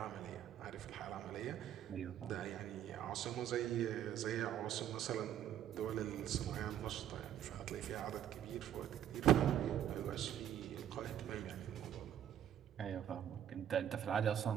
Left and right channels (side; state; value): left; quieter; 10.4 dB